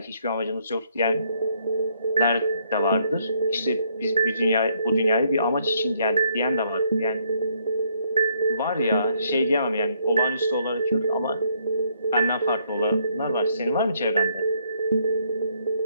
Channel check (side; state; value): both; inverted; correlation -0.70